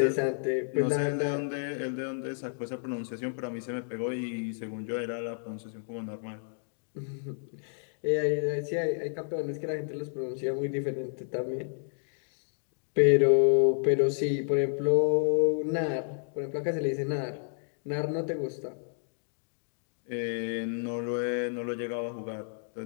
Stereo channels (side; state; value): right; silent; digital silence